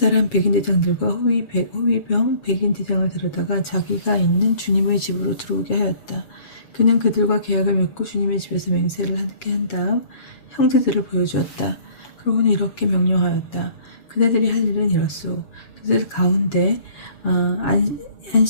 백인대장들과 호위병 백인대장을 데려다가 자기가 있는 주님의 집으로 들어오게 하였다. 그는 그들과 계약을 맺고 주님의 집에서 맹세를 함께 한 다음 형제들을 보여주었다. 그러고는 이렇게 명령하였다. 그대들이 할 일은 이렇소. 그들 가운데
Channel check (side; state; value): right; late; 7.1 ms